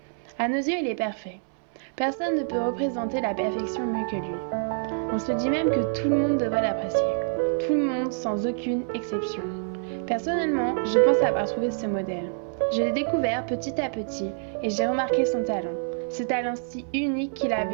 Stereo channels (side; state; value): left; silent; 61 dB below the other